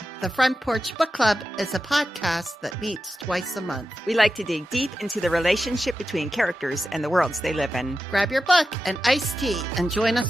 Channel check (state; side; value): normal; both; correlation 0.91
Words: The Front Porch Book Club is a podcast that meets twice a month. We like to dig deep into the relationship between characters and the worlds they live in. Grab your book and iced tea and join